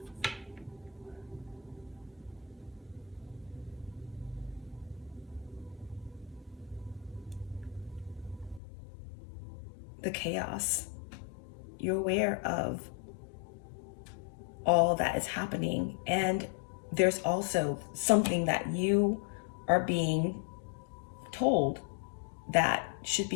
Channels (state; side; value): drops out; right; at 8.6 s